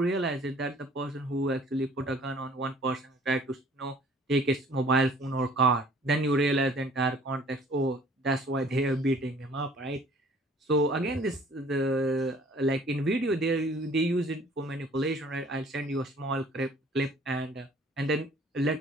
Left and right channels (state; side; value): normal; both; correlation 0.54